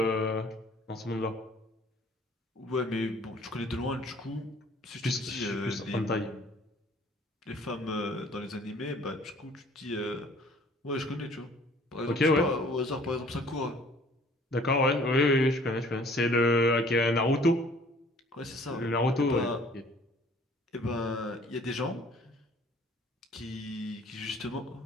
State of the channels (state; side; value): normal; both; correlation 0.54